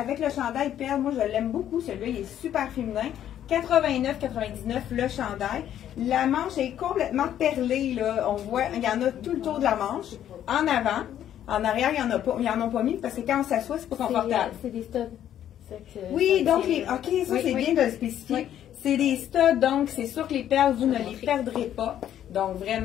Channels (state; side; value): quieter; right; 10.9 dB